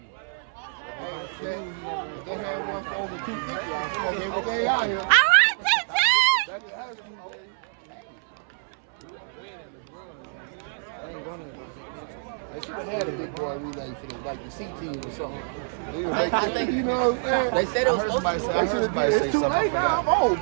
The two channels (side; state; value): left; silent; 60 dB below the other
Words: They had one for over 250. They out here. All right, TT! They should have had a big boy relay for the, like the C team or something. I think, you know what I'm saying? They said it was supposed to be. It's too late now. I'm old,